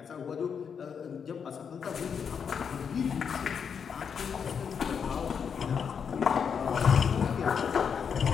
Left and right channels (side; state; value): right; quieter; 6.8 dB